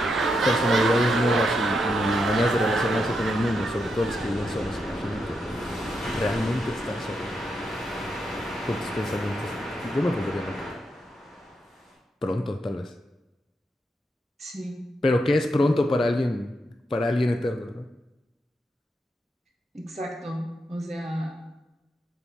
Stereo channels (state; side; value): normal; both; correlation 0.82